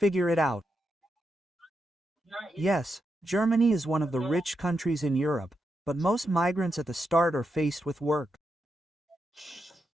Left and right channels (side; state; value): both; normal; correlation 0.85